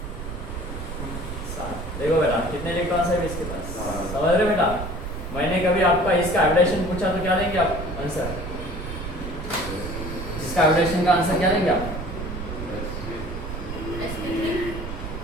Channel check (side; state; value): right; noise; rumble, 7 dB below the sound